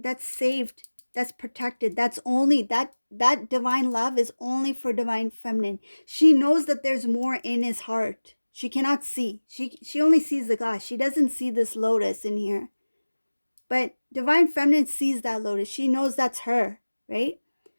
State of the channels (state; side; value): inverted; both; correlation -1.00